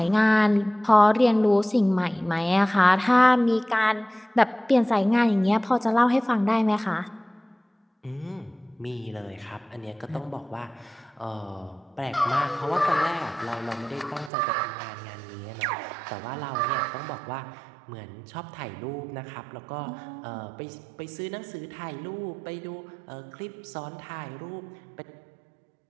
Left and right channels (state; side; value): drops out; left; at 14.3 s